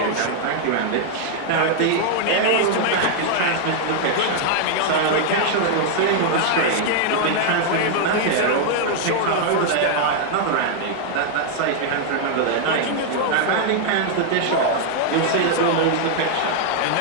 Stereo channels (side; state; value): both; different; correlation 0.00